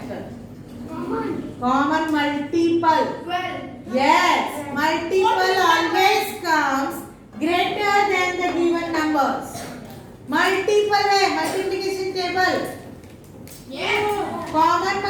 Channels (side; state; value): both; identical; correlation 1.00